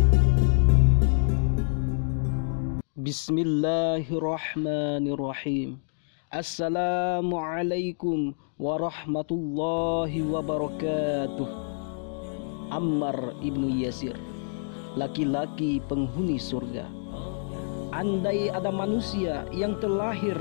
0. Bismillahirrahmanirrahim. Assalamualaikum warahmatullahi wabarakatuh. Ammar ibnu Yasir, laki-laki penghuni surga. Andai ada manusia yang terlahir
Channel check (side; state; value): right; silent; digital silence